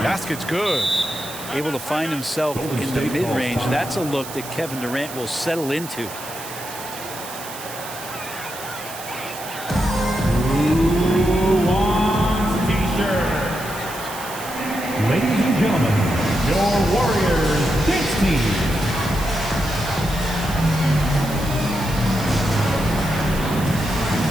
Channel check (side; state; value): right; noise; hiss, 12 dB below the sound